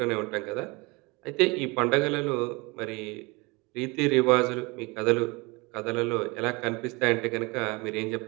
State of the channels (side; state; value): left; quieter; 26.3 dB